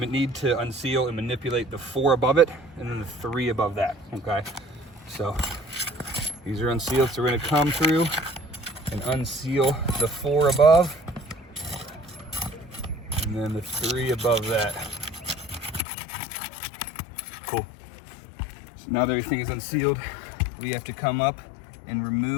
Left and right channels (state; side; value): drops out; right; at 15.8 s